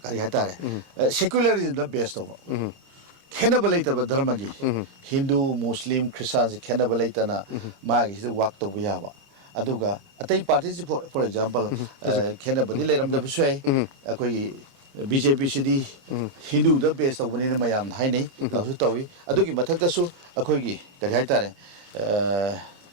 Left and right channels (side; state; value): left; late; 29 ms